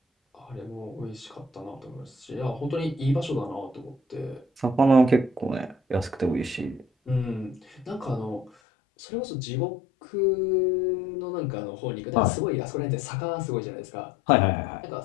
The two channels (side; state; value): right; drops out; at 8.5 s